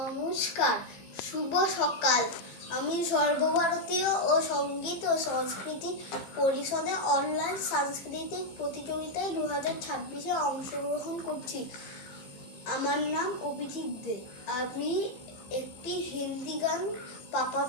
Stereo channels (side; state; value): right; late; 15 ms